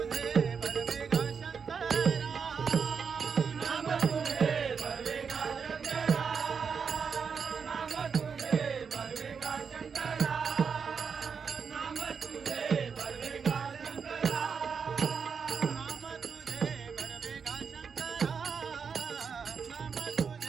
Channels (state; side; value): quieter; left; 6.1 dB